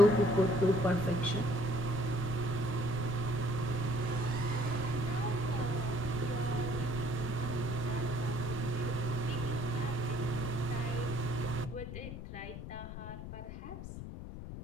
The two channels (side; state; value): left; noise; rumble, 9 dB below the sound